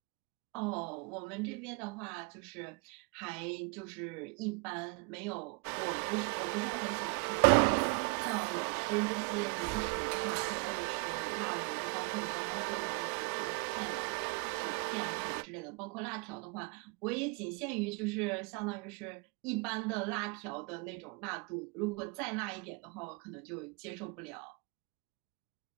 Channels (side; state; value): left; quieter; 31.1 dB